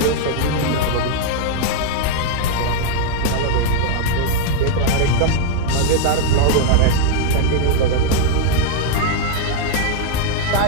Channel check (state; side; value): different; both; correlation -0.01